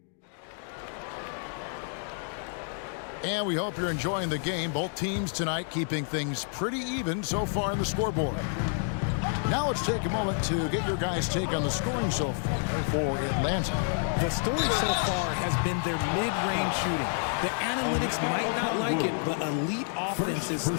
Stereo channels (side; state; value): right; silent; 56 dB below the other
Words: And we hope you're enjoying the game. Both teams tonight keeping things pretty even so far in the scoreboard. Now let's take a moment to get your guys' take on the scoring so far for Atlanta. The story so far has been their mid-range shooting. The analytics might not like it, but elite offenses